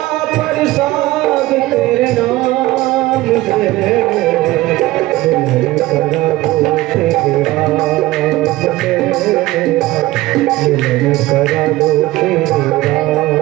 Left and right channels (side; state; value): left; quieter; 18.0 dB